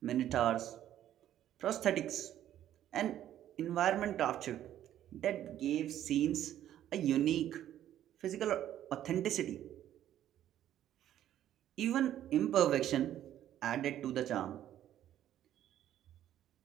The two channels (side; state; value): left; quieter; 11.7 dB